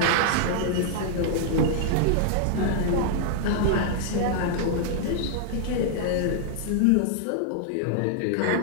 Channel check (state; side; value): different; both; correlation -0.01